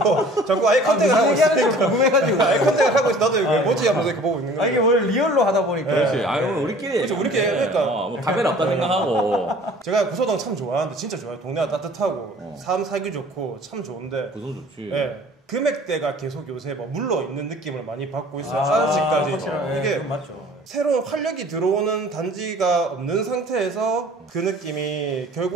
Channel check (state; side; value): normal; both; correlation 0.49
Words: 자꾸 아이 컨택을 하고 있으니까. 궁금해가지고 아이 컨택을 하고 있어. 나도 이거 뭐지 하면서 이렇게 보고 있는 거예요. 이게 원래 리얼로 하다 보니까 그렇지. 아니 오늘 우리끼리 그렇죠. 우리끼리 그러니까. 뭐 카메라 없다 생각하고 제가 구서동 참 좋아하는데 진짜 좋아요. 동네가 따뜻하고 삶 살기 좋고 참 좋은데 구성 좋지. 예. 금액대가 계속 요새 뭐 물러 있는 느낌을 많이 받고 있어요. 아, 아직까지. 확실하네. 이게 맞죠. 새로운 활력이 들어오는 단지가 없는 상태에서 그 느낌이